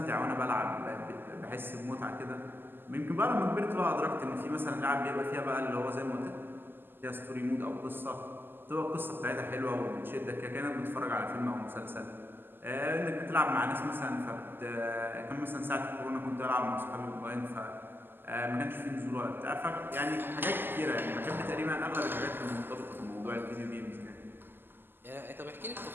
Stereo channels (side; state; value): left; late; 0.097 ms